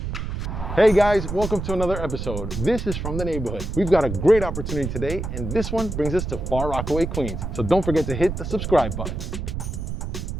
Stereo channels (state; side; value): noise; right; rumble, 5 dB below the sound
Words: Hey guys, welcome to another episode. This is From the Neighborhood. We've got a great opportunity today, and this one brings us to Far Rockaway, Queens. So don't forget to hit the subscribe button.